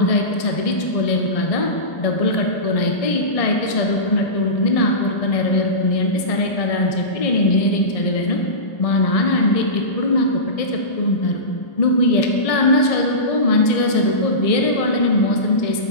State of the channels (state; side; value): late; right; 1.6 ms